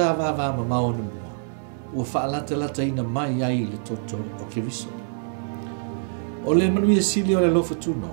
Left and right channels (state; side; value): silent; left; digital silence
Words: va ma ono mua o fa lata ina mai ai le toto o Keriso ole manu ye sili o le lo futu